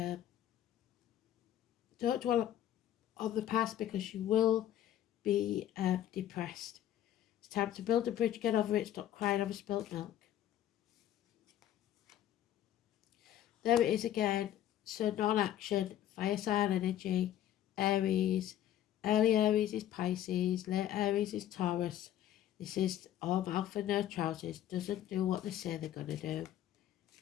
dwell on the past because you will be depressed. It's time to build a bridge, get over it, stop crying over spilt milk. There it is again. So non-action, fire sign energy, Aries. Early Aries is Pisces, late Aries is Taurus. This is all mouth and no trousers. Doesn't do what they say they're going to do.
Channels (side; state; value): right; quieter; 11.9 dB